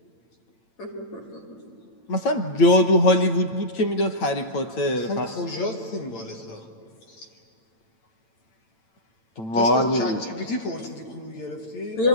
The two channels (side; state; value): right; late; 8.9 ms